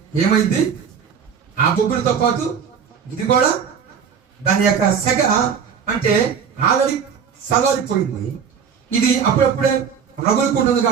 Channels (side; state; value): left; quieter; 7.0 dB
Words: ఏమైంది? ఆ బొగ్గులతో పాటు ఇది కూడా దాని యొక్క సెగ అంటే ఆల్రెడీ సలారిపోయింది. ఇది అప్పుడప్పుడే రగులుకుంటుంది